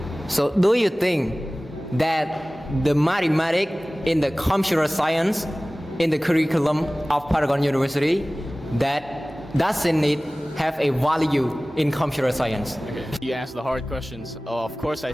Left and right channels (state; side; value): normal; both; correlation 0.98